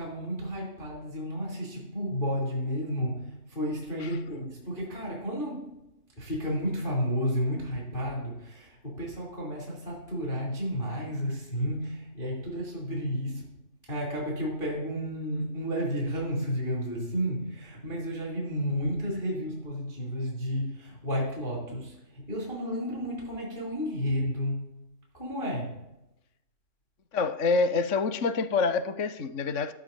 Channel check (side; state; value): right; late; 3.5 ms